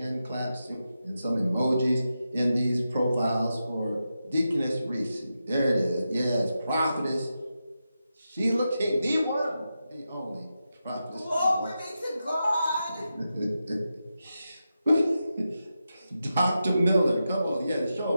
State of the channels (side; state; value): both; inverted; correlation -0.89